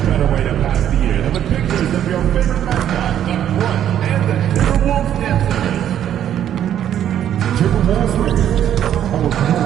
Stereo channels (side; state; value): left; quieter; 10.4 dB